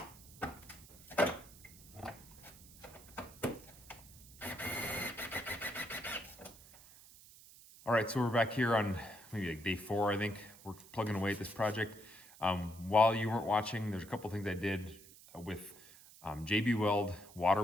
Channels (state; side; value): noise; right; hiss, 20 dB below the sound